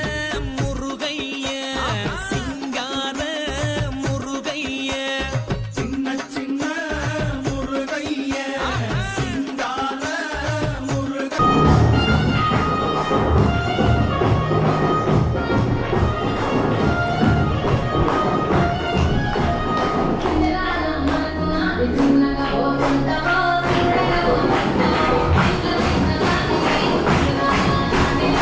முருகைய சிங்கார முருகைய சின்ன சின்ன முருகைய சிங்கார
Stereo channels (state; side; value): identical; both; correlation 1.00